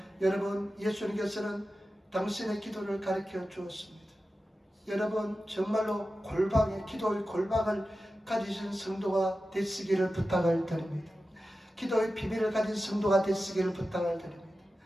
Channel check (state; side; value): normal; both; correlation 0.93